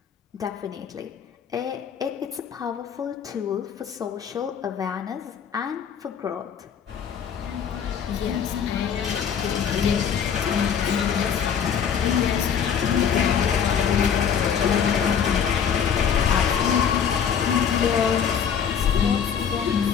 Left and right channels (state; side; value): quieter; right; 7.7 dB